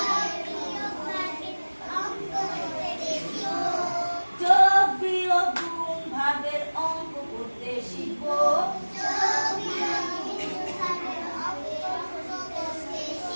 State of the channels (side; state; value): both; inverted; correlation -1.00